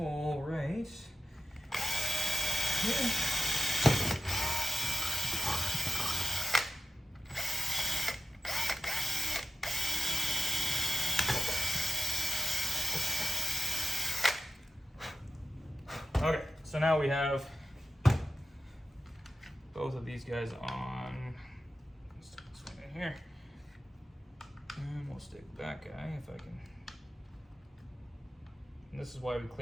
right here. Okay, so now we have both of these guys on. Let's stick this one in here. And we'll stick that guy if I can. And this is why we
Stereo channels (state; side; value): normal; both; correlation 0.89